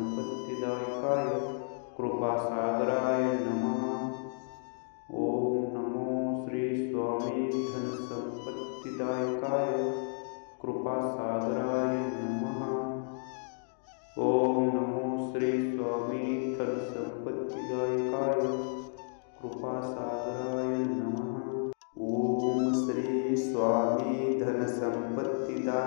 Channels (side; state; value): right; silent; digital silence